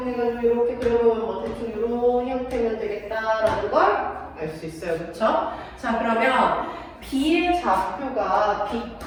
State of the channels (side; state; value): both; identical; correlation 1.00